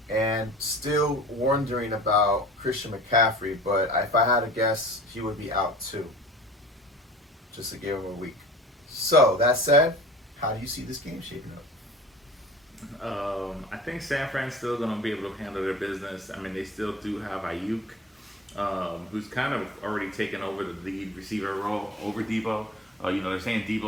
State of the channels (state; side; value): normal; both; correlation 0.42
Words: And still wondering about Christian McCaffrey, but if I had to guess, he would be out too. Just to give him a week. So, that said, how do you see this game shaping up? I think San Fran's still going to be able to handle their business. I mean, they still do have Ayuk, who's kind of already taken over the lead receiver role over Debo. They're saying